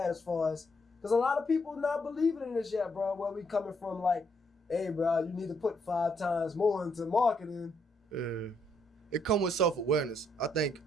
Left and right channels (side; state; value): both; normal; correlation 0.73